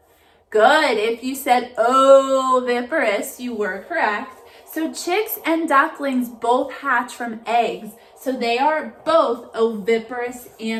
Good. If you said oviparous, you were correct. So chicks and ducklings both hatch from eggs. So they are both oviparous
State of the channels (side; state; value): both; identical; correlation 1.00